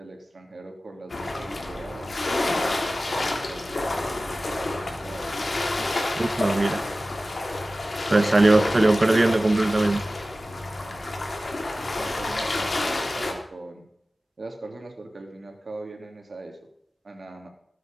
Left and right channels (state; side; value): normal; both; correlation 0.96